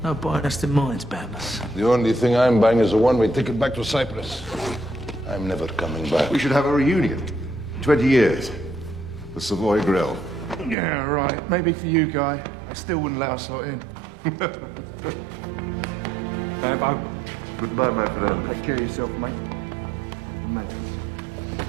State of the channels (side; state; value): left; drops out; at 10.8 s